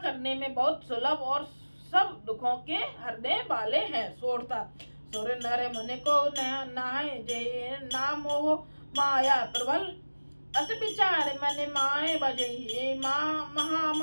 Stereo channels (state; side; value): inverted; both; correlation -1.00